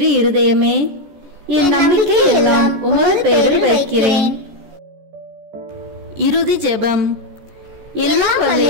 இருதயமே, என் நம்பிக்கை எல்லாம் உமது பெயரில் வைக்கிறேன். இறுதி ஜெபம். எல்லாம் வல்ல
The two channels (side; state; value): left; late; 14 ms